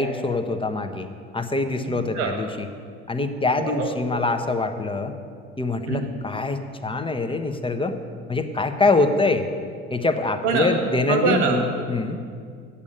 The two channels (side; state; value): both; normal; correlation 0.41